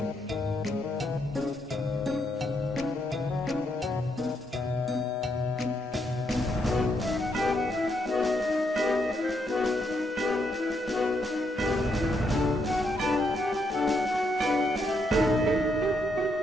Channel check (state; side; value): normal; both; correlation 0.77